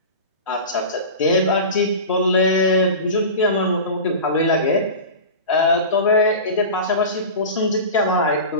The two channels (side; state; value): both; inverted; correlation -0.31